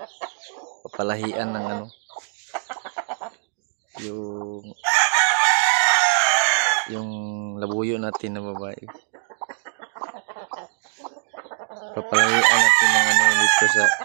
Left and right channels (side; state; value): left; silent; digital silence